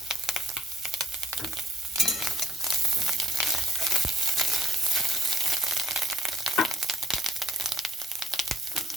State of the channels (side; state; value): both; normal; correlation 0.64